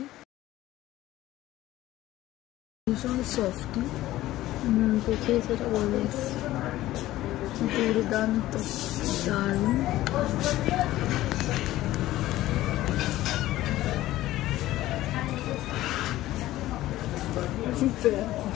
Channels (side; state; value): right; quieter; 15.6 dB